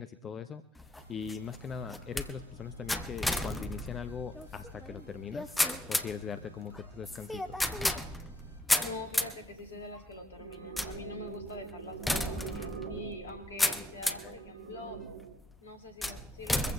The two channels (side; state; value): both; normal; correlation 0.76